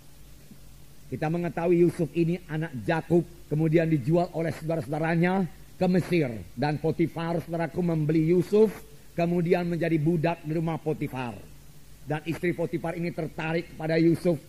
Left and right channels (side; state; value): both; identical; correlation 1.00